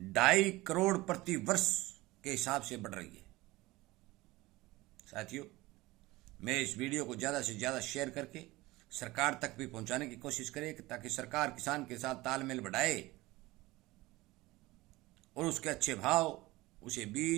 2.5 करोड़ प्रति वर्ष के हिसाब से बढ़ रही है। साथियों, मैं इस वीडियो को ज़्यादा से ज़्यादा शेयर करके सरकार तक भी पहुंचाने की कोशिश करे, ताकि सरकार किसान के साथ तालमेल बढ़ाए और उसके अच्छे भाव, उसे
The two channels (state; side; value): quieter; left; 19.9 dB